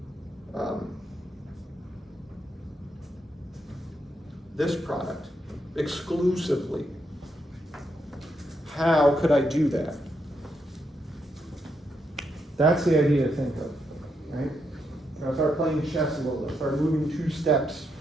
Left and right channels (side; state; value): both; normal; correlation 0.80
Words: this product exclusively? How could I do that? That's the idea to think of, right? I'll start playing chess a little bit, start moving 2 steps.